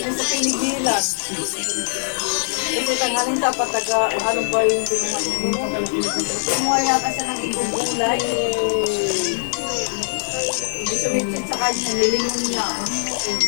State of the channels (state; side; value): silent; right; 63 dB below the other